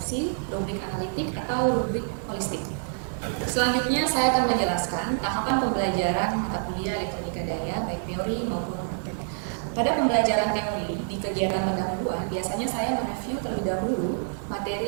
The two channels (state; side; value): silent; left; 60 dB below the other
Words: rubrik analitik, atau rubrik holistik. Selanjutnya saya akan menjelaskan tahapan pembelajaran mata kuliah elektronika daya baik teori maupun praktek. Pada pembelajaran teori di kegiatan pendahuluan, biasanya saya mereview terlebih dahulu